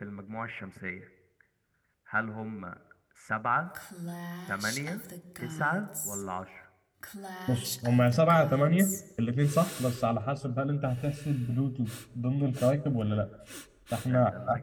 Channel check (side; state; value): both; identical; correlation 1.00